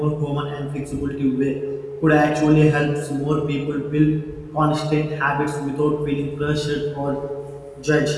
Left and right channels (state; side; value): identical; both; correlation 1.00